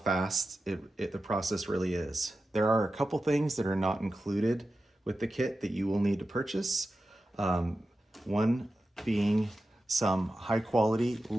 the process really is. There are a couple things that are not included with the kit that you will need to purchase. One being some high quality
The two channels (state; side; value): normal; both; correlation 0.92